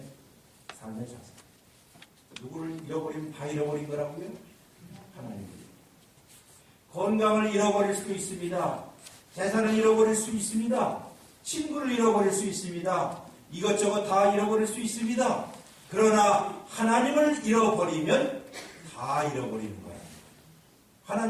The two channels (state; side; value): identical; both; correlation 1.00